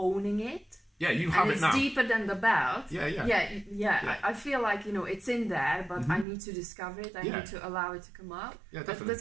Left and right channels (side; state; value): left; drops out; at 6.2 s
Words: it. Yeah, you have it now. It's deeper than the belt. Yeah. I feel like, it's in there, but I need to discover it. I need to allow it to come out. Yeah, definitely.